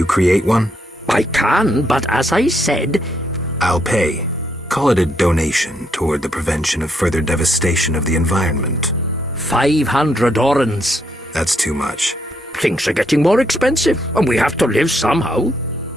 create one? I can, but as I said... I'll pay. Call it a donation toward the prevention of further devastation of the environment. 500 orens. That's too much. Things are getting more expensive, and we have to live somehow.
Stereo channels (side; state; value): both; normal; correlation 0.75